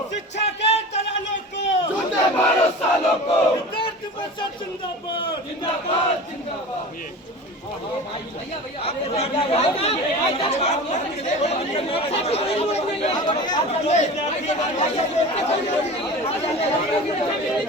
शिक्षा के दलालों को, विद्यार्थी परिषद जिंदाबाद, जिंदाबाद, जिंदाबाद।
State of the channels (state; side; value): normal; both; correlation 0.34